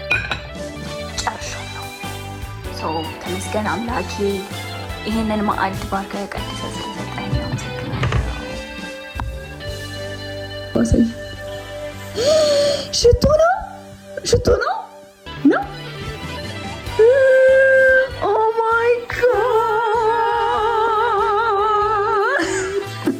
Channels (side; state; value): both; identical; correlation 1.00